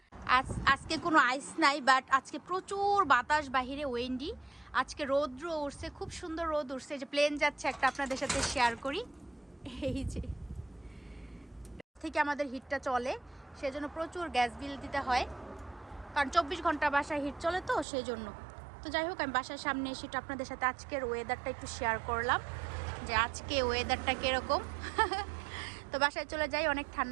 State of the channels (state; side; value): drops out; left; at 17.9 s